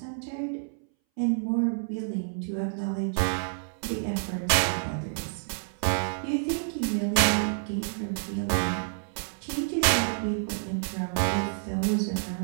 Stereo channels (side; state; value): left; silent; 59 dB below the other